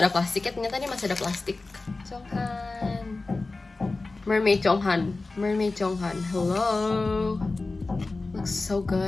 ada plastiknya, ternyata ini masih ada plastik. Chonghan, Mermaid Chonghan, Mermaid Chonghan. Hello. Looks so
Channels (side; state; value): right; quieter; 3.5 dB